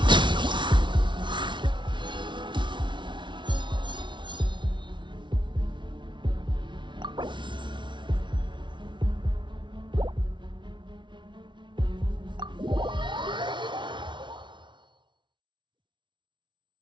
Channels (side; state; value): left; late; 0.23 ms